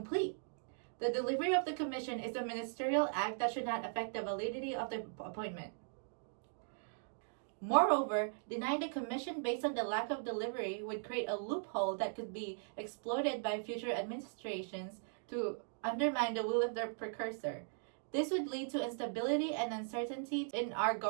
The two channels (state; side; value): silent; left; digital silence